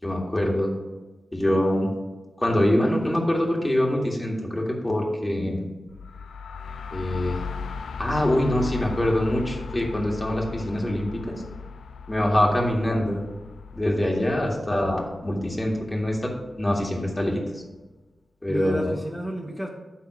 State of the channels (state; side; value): normal; both; correlation 0.95